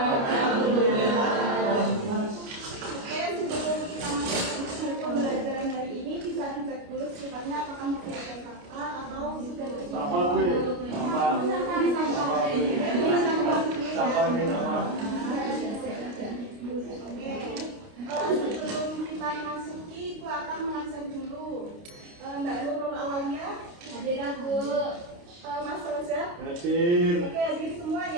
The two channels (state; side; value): late; left; 29 ms